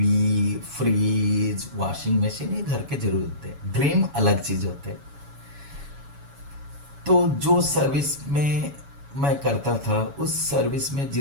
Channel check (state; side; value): late; left; 7.1 ms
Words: फ्रिज, वॉशिंग मशीन, ये घर के जरूरत थे। ड्रीम अलग चीज होते। तो जो सर्विस में मैं करता था, उस सर्विस में